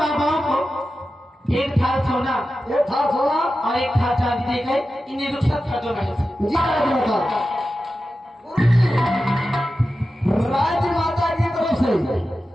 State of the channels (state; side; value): normal; both; correlation 0.92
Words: को एक थाल सोना ये था सोना और एक थाल चांदी देकर इन्हें रुखसत कर दो मेरे से। जी राजमाता, राजमाता की तरफ से